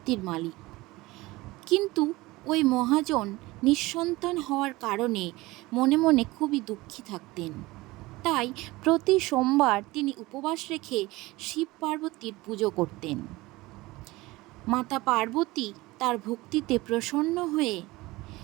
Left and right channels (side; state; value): left; quieter; 20.4 dB